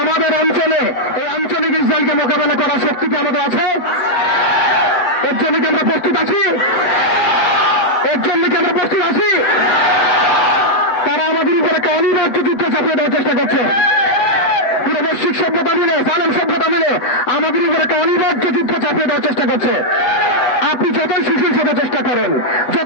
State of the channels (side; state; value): right; late; 7.8 ms